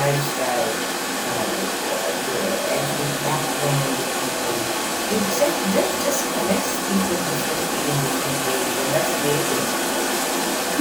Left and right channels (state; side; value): identical; both; correlation 1.00